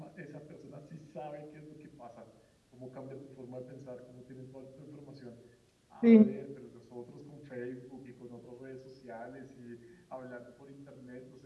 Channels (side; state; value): both; identical; correlation 1.00